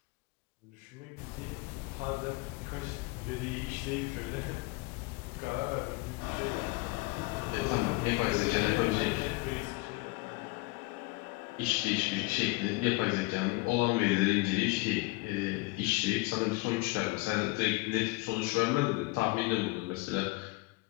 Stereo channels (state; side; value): quieter; right; 23.6 dB